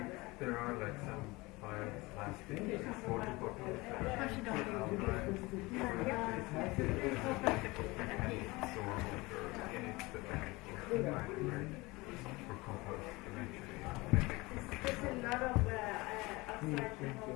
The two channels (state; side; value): quieter; right; 22.9 dB